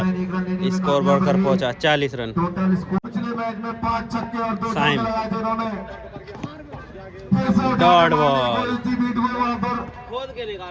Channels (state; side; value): identical; both; correlation 1.00